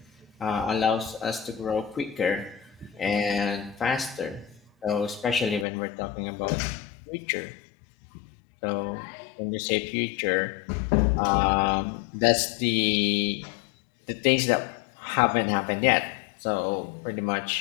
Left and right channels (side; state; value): right; drops out; at 5.7 s